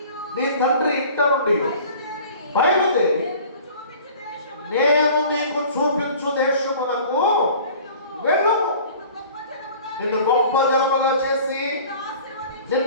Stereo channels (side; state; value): both; inverted; correlation -0.46